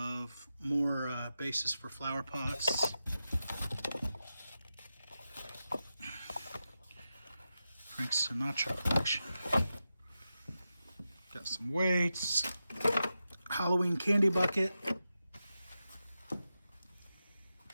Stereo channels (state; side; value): inverted; both; correlation -0.91